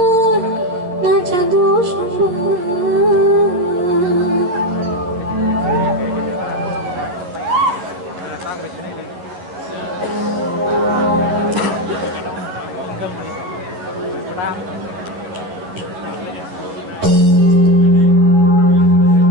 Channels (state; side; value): late; left; 11 ms